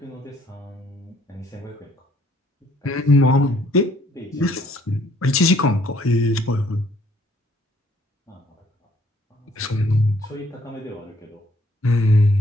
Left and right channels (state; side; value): normal; both; correlation 0.64